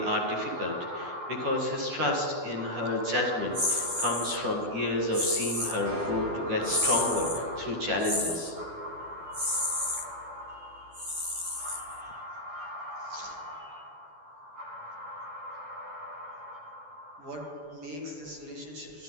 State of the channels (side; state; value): left; late; 12 ms